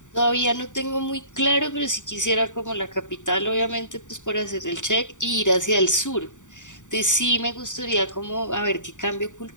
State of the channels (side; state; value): right; late; 0.86 ms